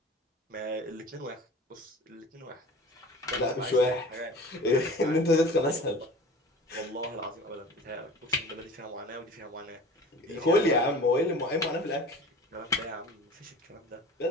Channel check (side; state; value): both; normal; correlation 0.40